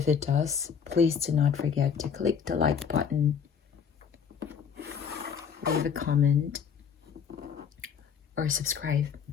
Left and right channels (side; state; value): right; quieter; 7.1 dB